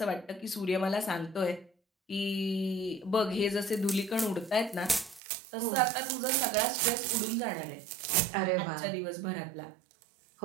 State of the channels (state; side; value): drops out; left; at 5.2 s